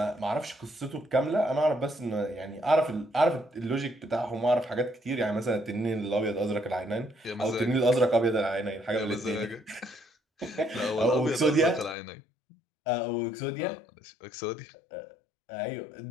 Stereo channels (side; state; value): right; drops out; at 12.0 s